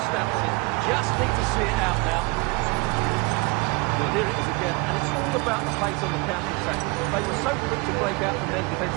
stamps it. Just need to see it out now. Well, here it is again, and it's all about the pace on the counter-attack. They were so quick to break out from their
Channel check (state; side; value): quieter; left; 27.7 dB